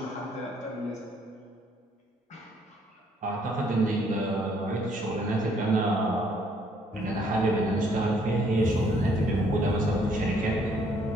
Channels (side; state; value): both; normal; correlation 0.66